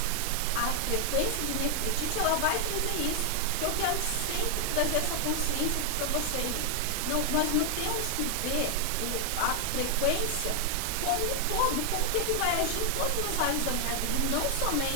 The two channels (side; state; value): both; different; correlation 0.00